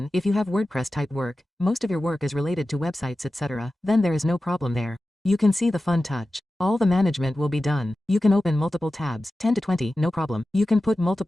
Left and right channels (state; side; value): normal; both; correlation 0.94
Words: if you have WordPress type work, most of your work is related to websites etc., then there is no problem there. You can see the fun touch. All the management will be done. You can open multiple tabs, 10 to 20, no problem. You can put